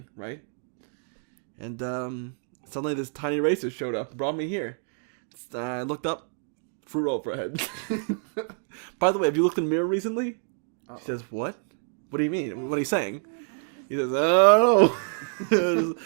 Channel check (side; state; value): left; silent; 60 dB below the other